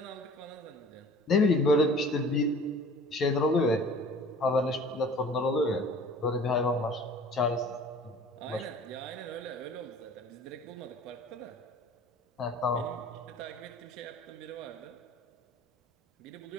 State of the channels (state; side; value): normal; both; correlation 0.46